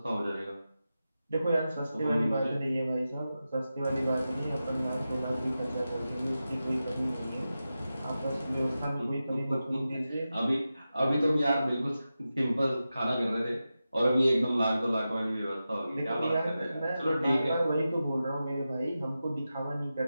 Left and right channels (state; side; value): inverted; both; correlation -0.92